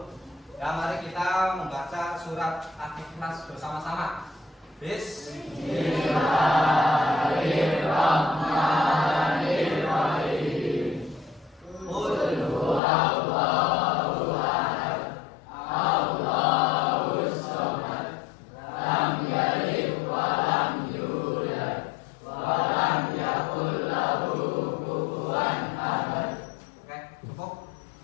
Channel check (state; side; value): drops out; right; at 12.8 s